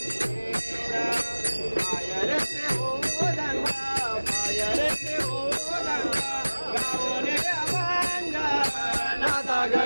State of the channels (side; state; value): both; inverted; correlation -1.00